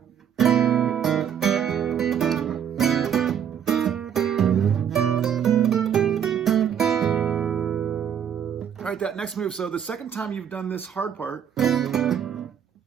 All right, that next move. So the second time you've done this hard part,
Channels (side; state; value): left; quieter; 8.6 dB